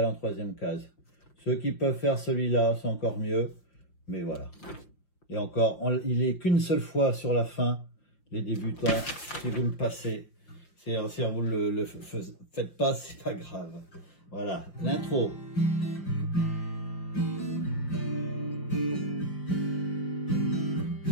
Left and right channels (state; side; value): late; right; 5.7 ms